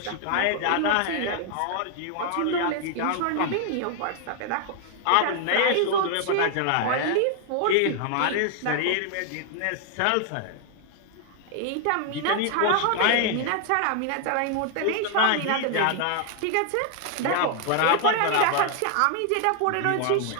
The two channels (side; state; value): both; different; correlation 0.00